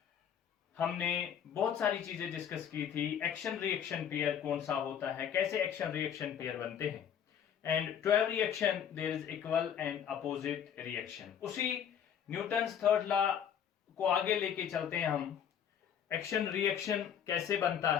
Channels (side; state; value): right; quieter; 8.6 dB